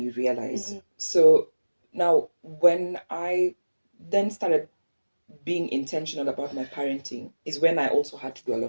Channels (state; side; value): inverted; both; correlation -1.00